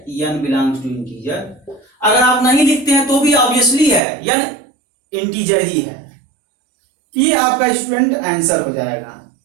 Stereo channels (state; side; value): drops out; left; at 4.0 s